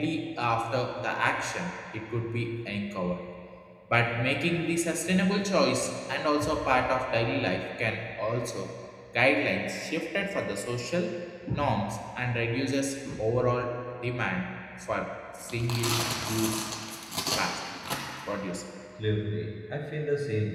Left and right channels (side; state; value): both; identical; correlation 1.00